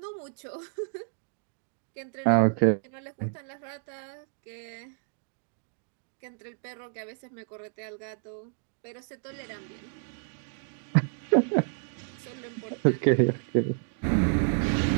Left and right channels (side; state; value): left; silent; digital silence